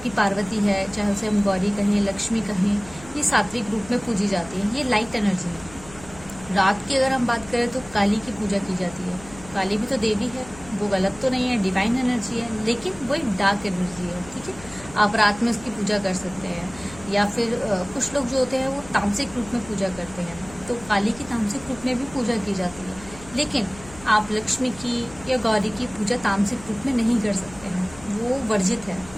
पार्वती है, चाहे उसे हम गौरी कहें, लक्ष्मी कहें, ये सात्विक रूप में पूजी जाती है, ये लाइट एनर्जी है। रात की अगर हम बात करें तो काली की पूजा की जाती है। काली भी तो देवी है, वो गलत तो नहीं है, डिवाइन एनर्जी है, लेकिन वो एक डार्क एनर्जी है, ठीक है। आप रात में उसकी पूजा कर सकते हैं। या फिर कुछ लोग जो होते हैं वो तामसिक रूप में पूजा करते हैं, तो काली की तामसिक रूप में भी पूजा की जाती है। लेकिन आप लक्ष्मी की या गौरी की पूजा तामसिक रूप में नहीं कर सकते हैं, वो वर्जित है,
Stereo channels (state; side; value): noise; left; hum, 19 dB below the sound